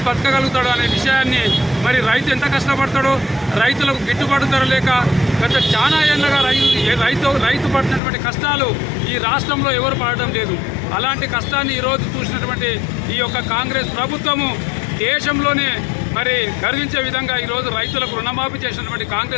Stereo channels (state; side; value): drops out; right; at 8.0 s